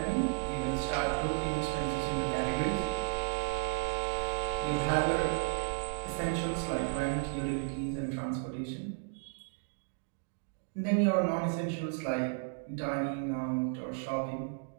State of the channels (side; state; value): left; silent; 55 dB below the other